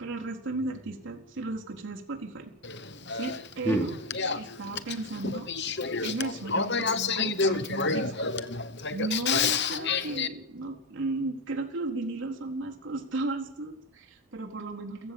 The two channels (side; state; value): both; normal; correlation 0.12